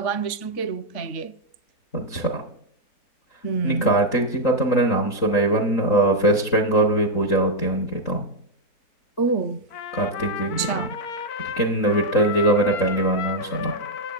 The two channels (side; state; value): right; late; 3.5 ms